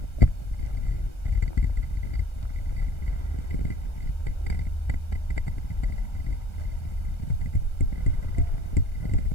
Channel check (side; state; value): right; late; 1.3 ms